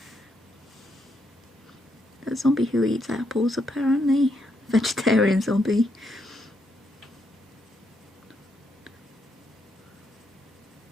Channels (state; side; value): normal; both; correlation 0.78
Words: A zombie who eats apples, apparently. Vegetarian zombie.